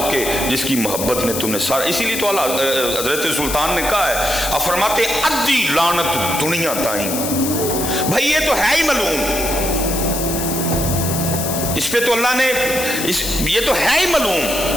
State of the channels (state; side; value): noise; left; hiss, 4 dB below the sound